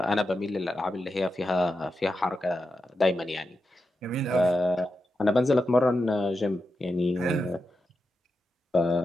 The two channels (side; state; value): both; normal; correlation 0.89